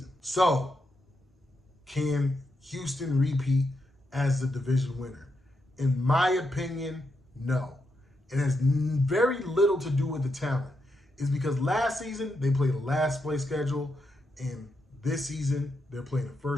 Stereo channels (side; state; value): both; normal; correlation 0.83